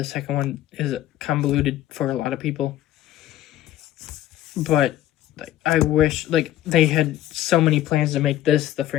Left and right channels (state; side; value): quieter; right; 13.4 dB